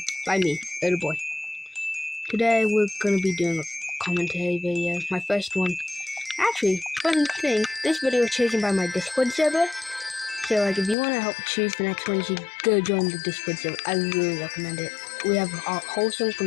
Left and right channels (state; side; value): drops out; right; at 11.0 s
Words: by me, Little Boy. Today we're gonna be doing a commentary video, my first one. Actually, fun thing, this video is chosen by my Discord server. So like, if you want to help choose the next one, you should go join the Discord server. I really recommend it. We have a wholesome